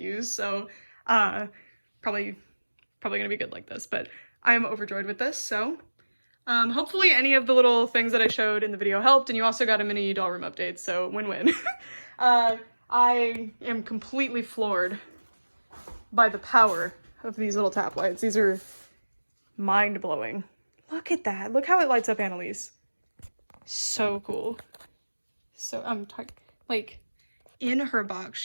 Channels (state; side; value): inverted; both; correlation -1.00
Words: so probably gonna be good like this, but I'm overjoyed with this. So hopefully any of the little things that I showed in the video helped, and you also got a mini doll room update, so win-win. I am completely floored by the power of these little tap lights. These are mind-blowing. Look at that. Look how it lights up Annalise. So cool. So I'm like in her box,